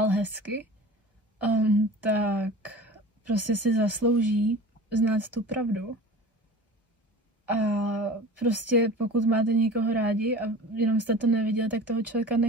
hezky, tak prostě si zaslouží znát tu pravdu. A prostě pokud máte někoho rádi a jenom jste to neviděli, tak toho člověka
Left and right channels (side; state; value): both; normal; correlation 0.38